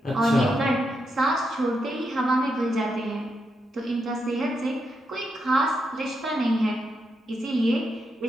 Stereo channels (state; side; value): normal; both; correlation 0.83